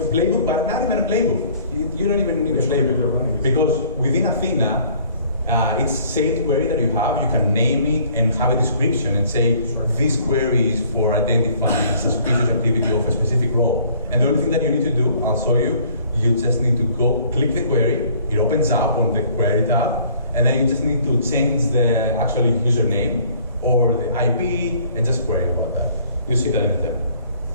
playbook, but not even a playbook. You don't even need a playbook, because within Athena, it's saved query that you have. You can name it and have a description and say, this query is for identifying suspicious activity of a specific role. And the only thing that you need to do, I'll show you, you just need to go click the query. It opens up on the query tab, and then you just need to change the actual username or the IP and just query about that. You see that in the demo.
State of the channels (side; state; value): both; inverted; correlation -0.57